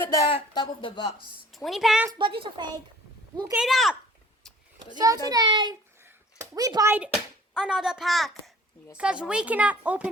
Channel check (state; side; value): normal; both; correlation 0.51